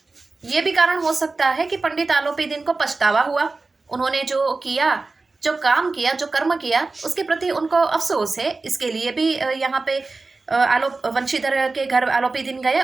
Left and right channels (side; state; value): left; quieter; 3.7 dB